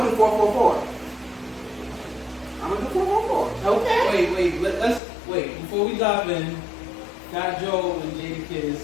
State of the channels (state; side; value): drops out; right; at 5.0 s